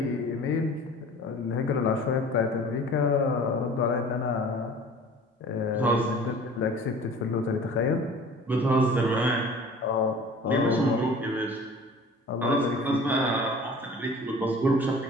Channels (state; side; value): normal; both; correlation 0.44